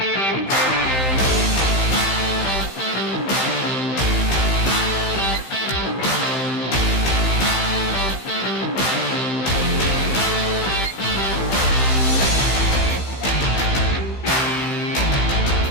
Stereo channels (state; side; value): late; right; 15 ms